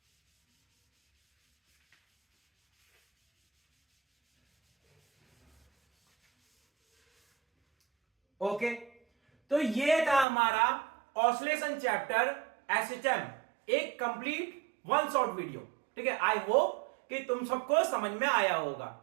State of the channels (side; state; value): left; drops out; at 10.2 s